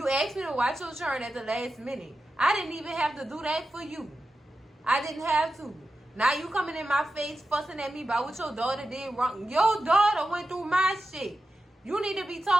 asked me to watch your children at the last minute. I didn't even have to do that for you. I didn't have to. Now you coming in my face fussing at me about what your daughter did wrong. Your daughter went through my shit. You need to be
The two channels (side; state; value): both; normal; correlation 0.91